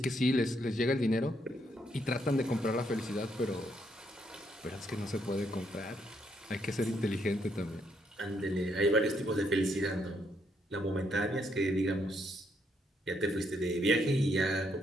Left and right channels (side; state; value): both; normal; correlation 0.74